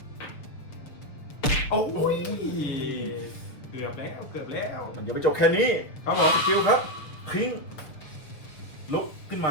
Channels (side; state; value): right; late; 6.7 ms